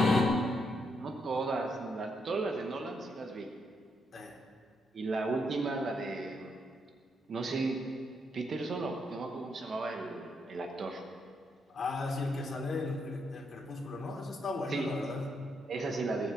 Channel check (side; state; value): both; normal; correlation 0.78